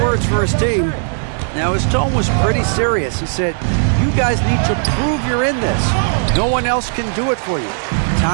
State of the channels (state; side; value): silent; left; digital silence